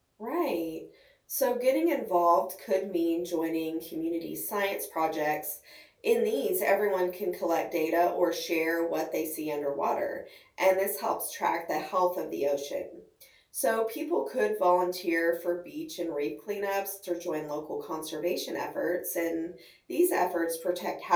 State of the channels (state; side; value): identical; both; correlation 1.00